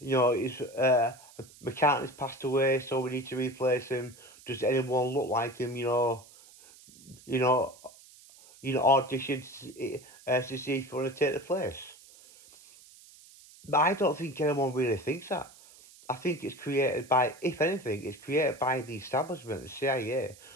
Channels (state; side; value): noise; right; hiss, 23 dB below the sound